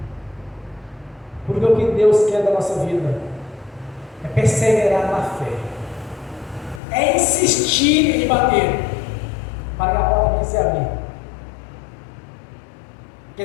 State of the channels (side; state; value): right; drops out; at 6.8 s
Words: Porque o que Deus quer da nossa vida é perseverar na fé, é insistir em bater, para que a porta venha se abrir. Quer